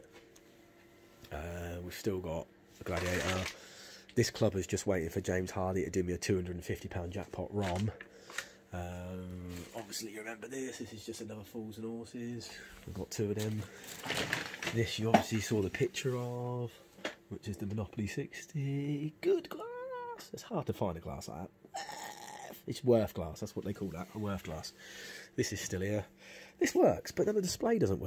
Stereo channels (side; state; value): both; identical; correlation 1.00